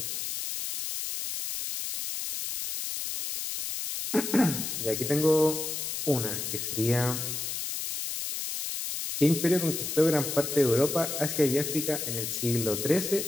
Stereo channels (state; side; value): noise; left; hiss, 4 dB below the sound